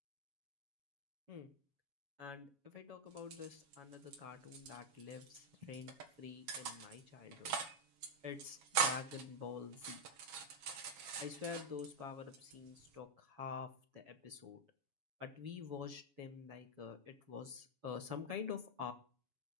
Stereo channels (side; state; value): left; late; 7.2 ms